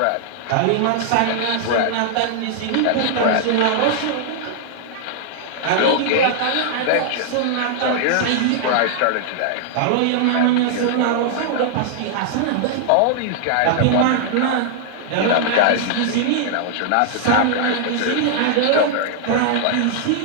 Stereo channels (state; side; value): different; both; correlation -0.01